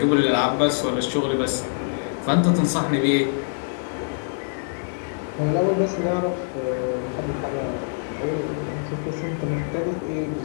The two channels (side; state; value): right; silent; 62 dB below the other